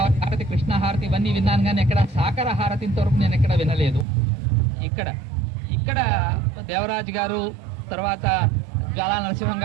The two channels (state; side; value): drops out; left; at 4.0 s